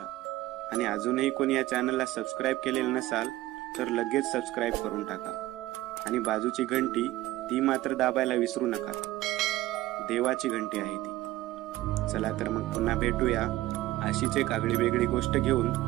आणि अजूनही कोणी या चॅनलला सबस्क्राईब केलेलं नसाल तर लगेच सबस्क्राईब करून टाका. आणि बाजूची घंटी ती मात्र दाबायला विसरू नका. देवाची घंटी आहे ती. चला तर मग पुन्हा भेटूया अशीच एक आगळी वेगळी गोष्ट घेऊन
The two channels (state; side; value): quieter; left; 16.5 dB